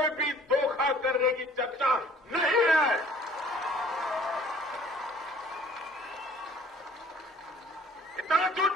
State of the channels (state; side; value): normal; both; correlation 0.55